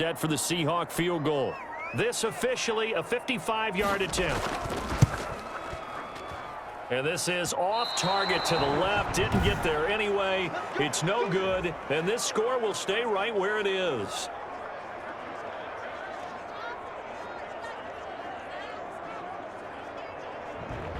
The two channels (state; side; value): identical; both; correlation 1.00